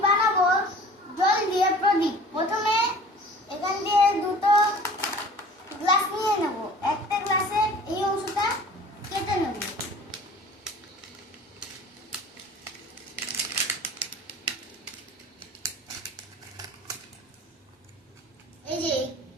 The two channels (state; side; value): normal; both; correlation 0.45